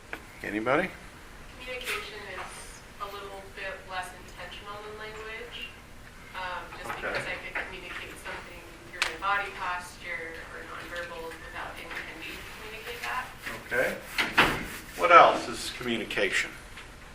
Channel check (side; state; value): both; identical; correlation 1.00